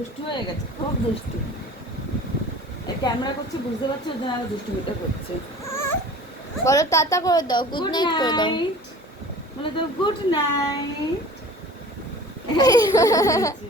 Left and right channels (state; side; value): normal; both; correlation 0.43